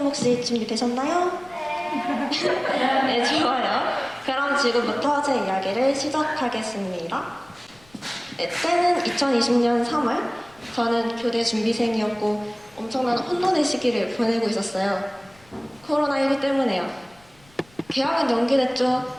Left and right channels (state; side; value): noise; left; rumble, 29 dB below the sound